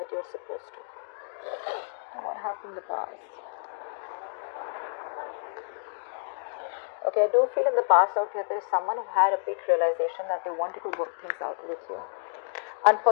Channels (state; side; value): silent; right; digital silence